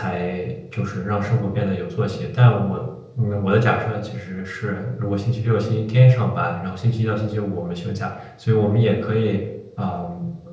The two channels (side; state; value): both; identical; correlation 1.00